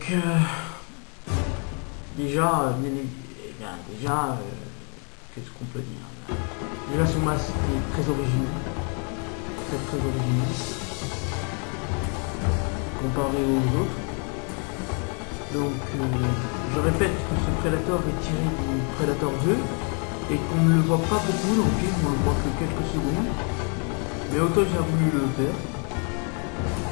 déjà, qu'est-ce qu'on peut dire? Déjà son masque est très original, très original, comparé aux autres. Donc je répète que ce Predator est tiré du Predator 2 et qu'on ne le voit pas beaucoup dans le film, on le voit que quelques secondes. Mais Autoy a voulu le faire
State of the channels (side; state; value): right; quieter; 39.1 dB